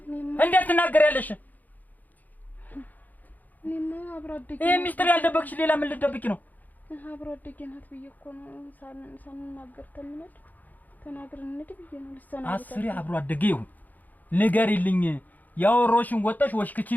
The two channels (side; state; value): right; late; 0.082 ms